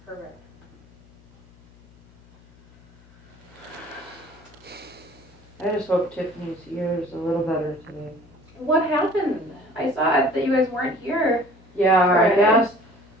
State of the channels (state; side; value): noise; left; hum, 26 dB below the sound